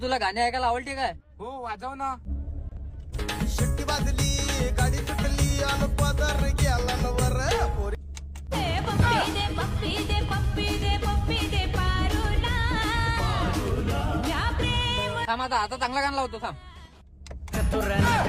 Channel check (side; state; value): both; identical; correlation 1.00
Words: तुला गाणे ऐकायला आवडते काय? हो वाजव ना. शिट्टी वाजली गाडी सुटली आणि पदर गेला नवर पोरी. थांब आता चांगला गाणं लावतो थांब. चतुर